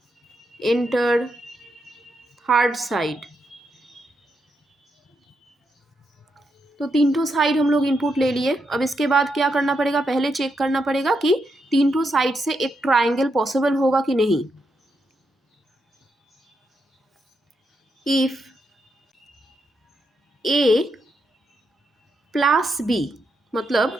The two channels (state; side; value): normal; both; correlation 0.82